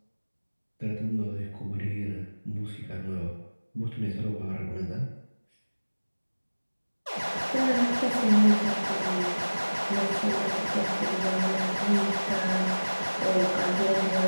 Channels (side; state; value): both; inverted; correlation -1.00